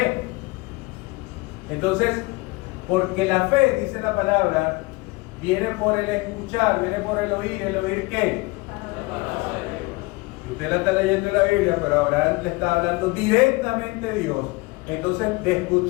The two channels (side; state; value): right; quieter; 24.1 dB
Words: Entonces, porque la fe, dice la palabra, viene por el escuchar, viene por el oír ¿qué? Usted la está leyendo en la Biblia, pero Abraham le está hablando directamente a Dios. Entonces, de